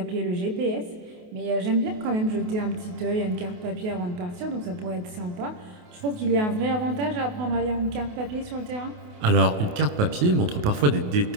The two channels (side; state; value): left; late; 28 ms